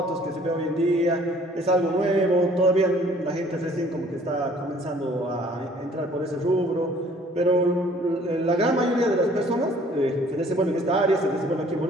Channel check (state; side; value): normal; both; correlation 0.56